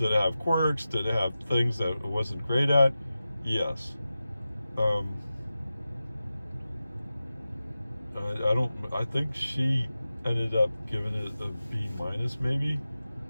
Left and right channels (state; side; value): inverted; both; correlation -0.94